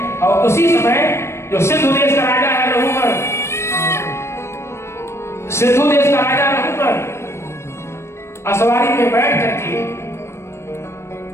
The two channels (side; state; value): right; late; 0.13 ms